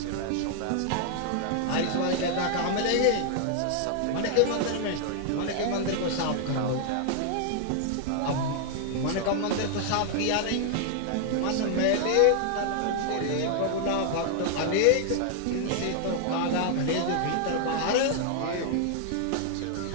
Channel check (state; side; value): different; both; correlation 0.00